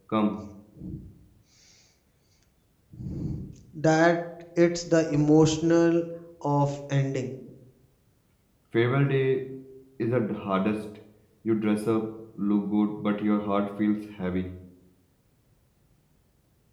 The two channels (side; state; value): both; identical; correlation 1.00